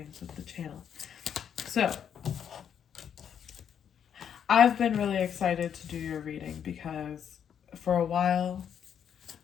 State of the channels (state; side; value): quieter; right; 8.4 dB